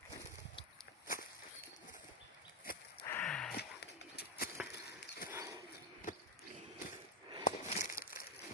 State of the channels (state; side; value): normal; both; correlation 0.05